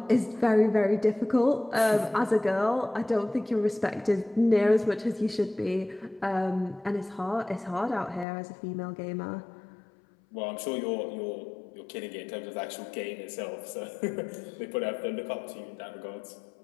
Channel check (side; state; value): right; drops out; at 8.2 s